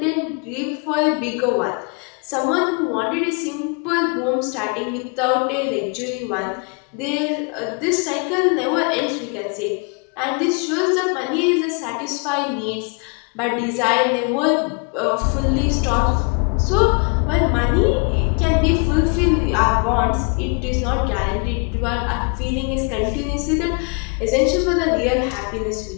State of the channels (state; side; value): quieter; right; 35.9 dB